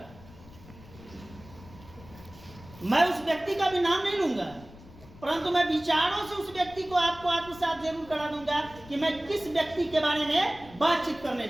मैं उस व्यक्ति का भी नाम नहीं लूंगा, परंतु मैं विचारों से उस व्यक्ति को आपको आत्मसात जरूर करा दूंगा कि मैं किस व्यक्ति के बारे में बातचीत करने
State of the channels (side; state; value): left; noise; rumble, 20 dB below the sound